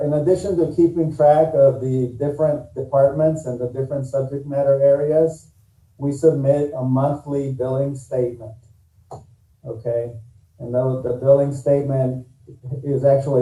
addition to keeping track of the different departments and the different subject matter areas, we submit a monthly billing statement. Okay, and the billing statement is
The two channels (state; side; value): identical; both; correlation 1.00